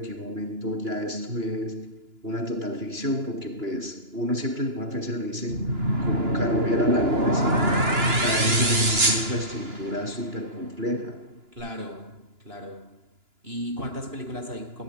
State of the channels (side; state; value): left; late; 2.9 ms